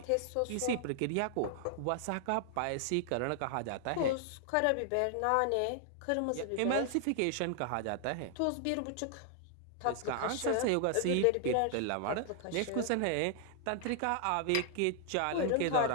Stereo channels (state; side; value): different; both; correlation 0.00